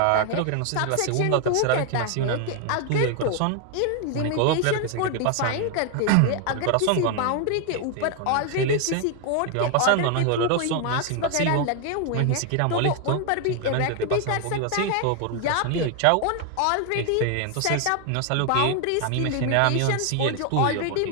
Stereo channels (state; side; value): different; both; correlation 0.00